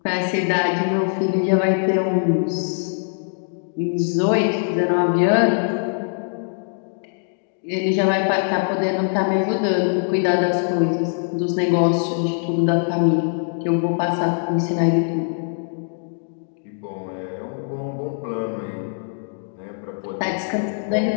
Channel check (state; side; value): silent; right; digital silence